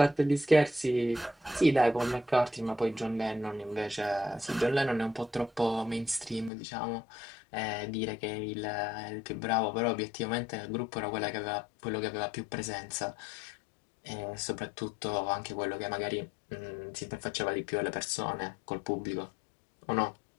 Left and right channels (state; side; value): drops out; right; at 6.5 s